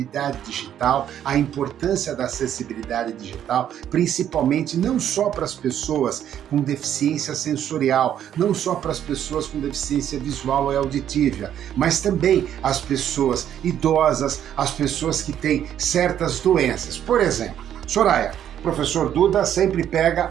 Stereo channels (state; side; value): quieter; left; 10.2 dB